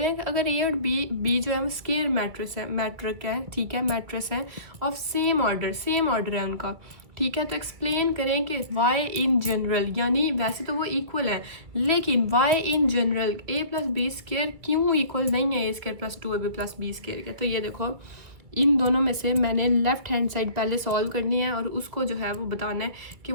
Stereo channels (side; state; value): left; late; 2.5 ms